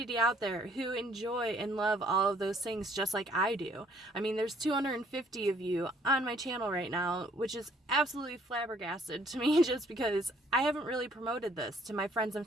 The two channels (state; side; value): normal; both; correlation 0.62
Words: out there who enjoy and love all of those things just like I do. I mean, there's 250 of you on my channel right now, which is absolutely flabbergasted to me just because I haven't really promoted this to my friends and